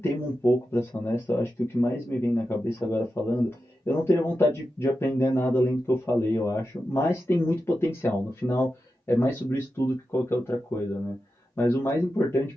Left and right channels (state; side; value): normal; both; correlation 0.90